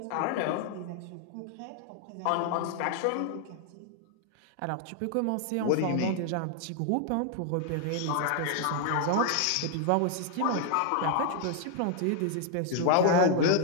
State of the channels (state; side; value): different; both; correlation 0.00